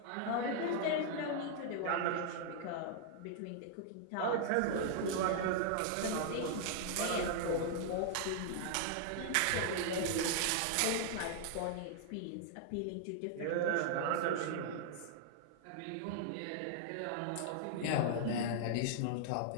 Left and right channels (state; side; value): different; both; correlation -0.01